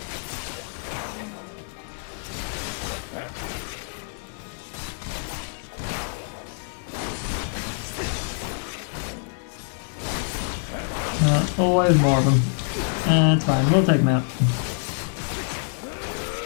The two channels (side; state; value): right; silent; digital silence